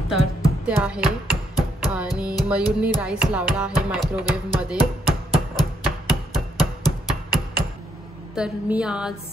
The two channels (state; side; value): normal; both; correlation 0.74